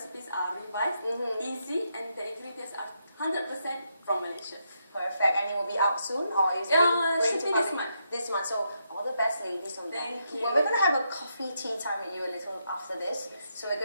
are revised, easy, and the ingredients are 100% from Malaysia. Perfect. And it will be out soon, or is it should be this month? This month. So all the best, ladies, on that. Thank you. Well, we're going to have a coffee tea time with you a little after this. So we're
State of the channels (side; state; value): both; inverted; correlation -0.80